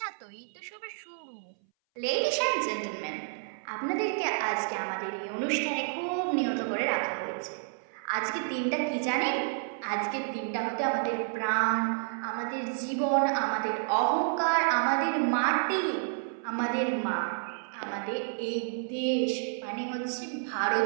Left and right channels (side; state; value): left; silent; 58 dB below the other